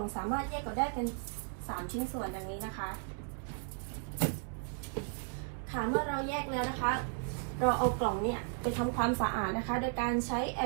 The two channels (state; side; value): silent; left; 54 dB below the other